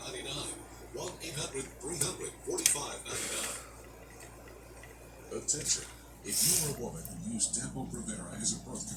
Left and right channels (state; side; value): identical; both; correlation 1.00